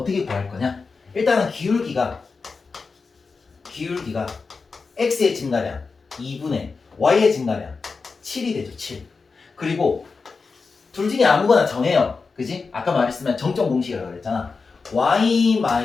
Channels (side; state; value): right; quieter; 4.6 dB